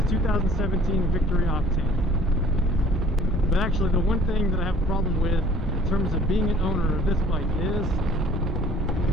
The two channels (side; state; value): both; normal; correlation 0.53